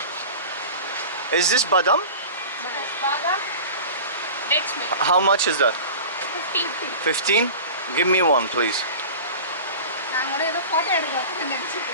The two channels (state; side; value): inverted; both; correlation -0.35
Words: Is this Badam? Badam. Dates milk. How much is that? 15. 15? Give me one, please.